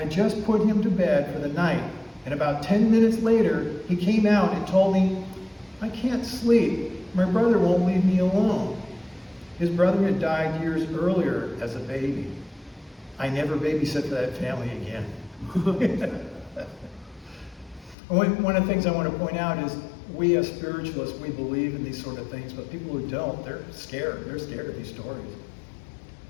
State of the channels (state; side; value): drops out; right; at 17.9 s